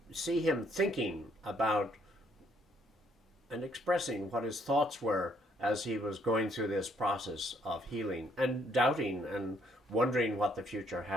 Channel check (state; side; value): normal; both; correlation 0.68